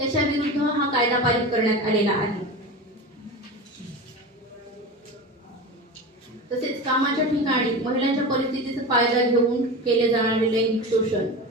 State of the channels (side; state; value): both; normal; correlation 0.28